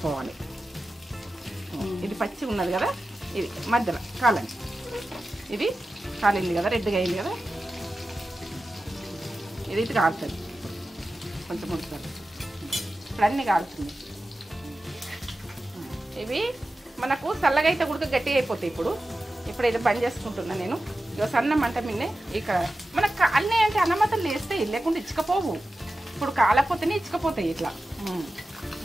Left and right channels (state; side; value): normal; both; correlation 0.93